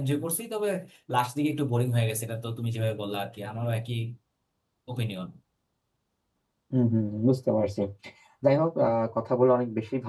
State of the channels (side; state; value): both; identical; correlation 1.00